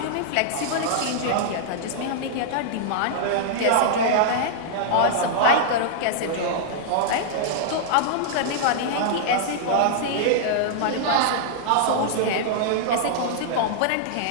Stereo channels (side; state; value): both; different; correlation -0.02